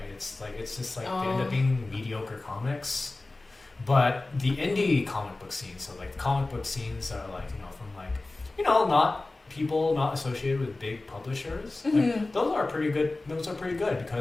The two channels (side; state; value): right; quieter; 3.1 dB